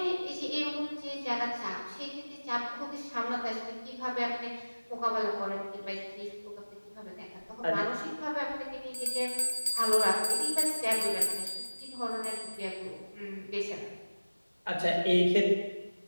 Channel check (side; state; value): both; inverted; correlation -1.00